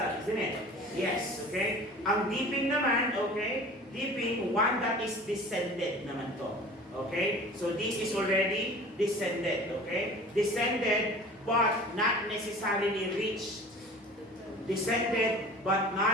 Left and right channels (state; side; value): normal; both; correlation 0.42